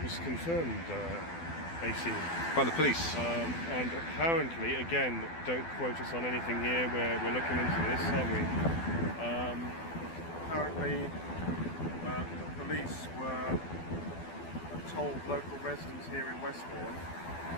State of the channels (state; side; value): late; right; 12 ms